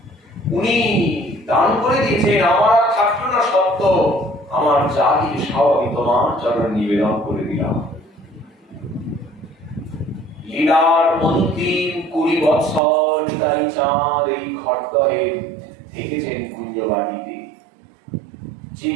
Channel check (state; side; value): drops out; left; at 12.8 s